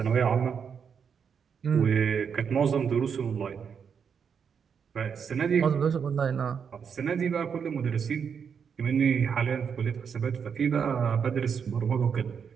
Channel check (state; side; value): quieter; left; 6.8 dB